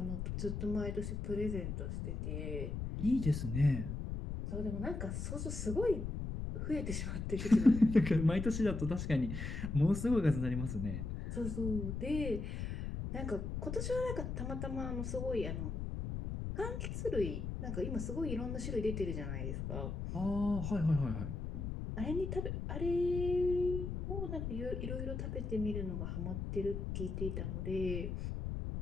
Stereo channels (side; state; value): left; noise; rumble, 4 dB below the sound